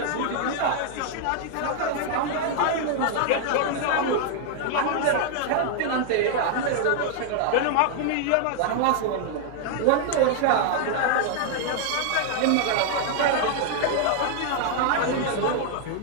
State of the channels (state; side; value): different; both; correlation 0.00